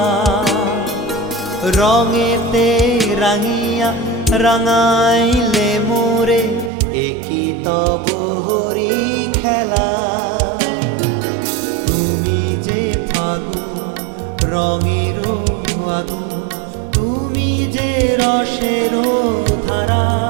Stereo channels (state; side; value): drops out; left; at 6.7 s